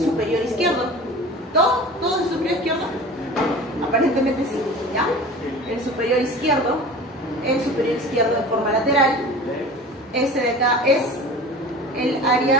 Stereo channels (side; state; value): both; normal; correlation 0.38